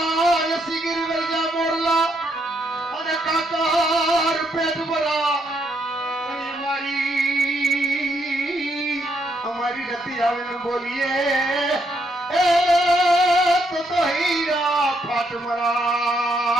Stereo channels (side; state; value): both; normal; correlation 0.75